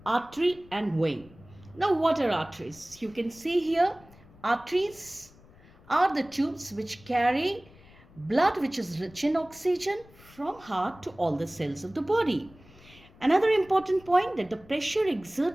artery and vein. Now, what are arteries? You can see here, arteries are the tubes which carry blood which is rich in oxygen from heart to all the cells of the body. Another important point that the pressure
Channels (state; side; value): noise; left; rumble, 24 dB below the sound